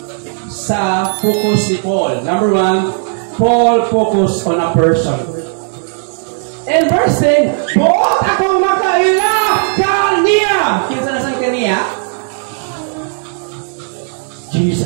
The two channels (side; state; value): left; silent; 71 dB below the other